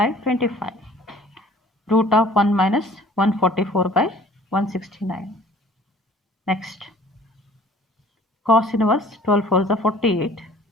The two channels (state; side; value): normal; both; correlation 0.51